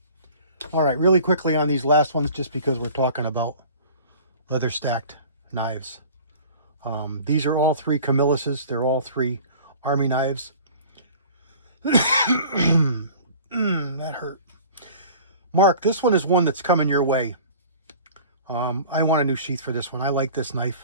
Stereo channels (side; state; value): both; inverted; correlation -0.44